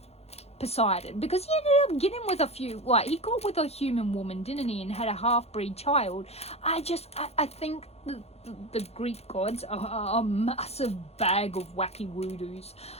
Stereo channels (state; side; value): late; right; 0.30 ms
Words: Poseidon, because he ended up getting with he got with a human woman, didn't he, and had a half-breed child. I think the Greek gods are a massive bag of wacky woodoos.